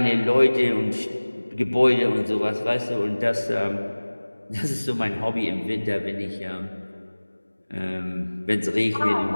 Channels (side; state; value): both; inverted; correlation -1.00